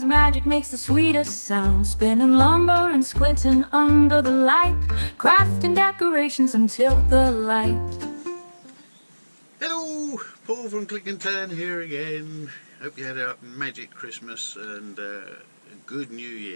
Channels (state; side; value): inverted; both; correlation -1.00